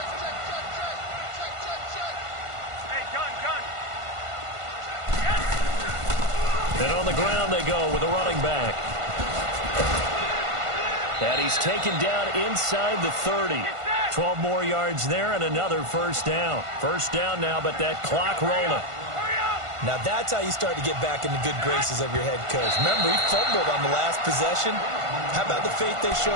And on the ground they go with a running back. And he's taken down inside the 30. 12 more yards there and another first down. First down now, but that clock rolling. Now that's how you start to get back in the good graces of your head coach. Remember, he fumbled on the last possession. How about the faith they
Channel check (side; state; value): left; late; 1.5 ms